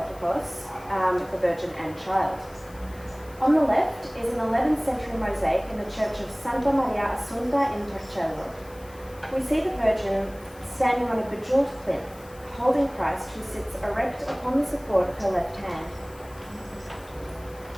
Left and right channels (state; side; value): noise; left; hiss, 24 dB below the sound